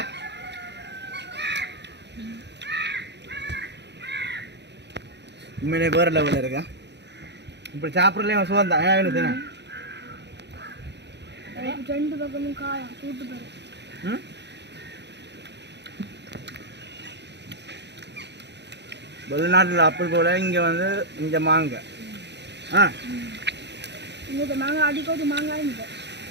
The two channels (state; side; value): late; left; 0.50 ms